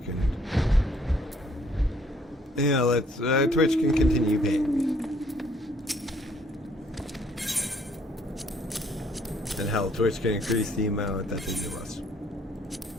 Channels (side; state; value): both; normal; correlation 0.64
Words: can. Yeah, Twitch can continue paying me. And hell, Twitch can increase the amount that they give us.